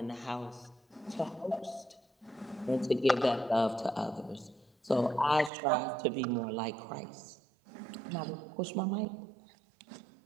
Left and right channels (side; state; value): left; drops out; at 5.5 s